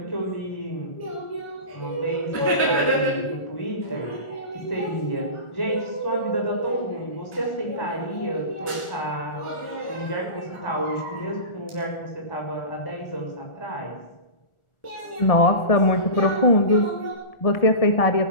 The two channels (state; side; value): late; right; 1.4 ms